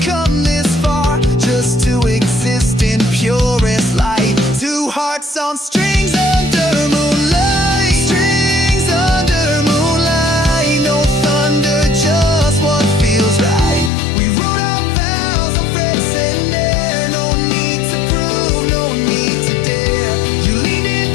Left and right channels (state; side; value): drops out; right; at 13.9 s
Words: come this far, just to exist in purest light. Two hearts on strings under moonlight, strings under moonlight. No thunder, just what feels right. We wrote our vows on frets and air, no need to prove, no need to dare. You leaned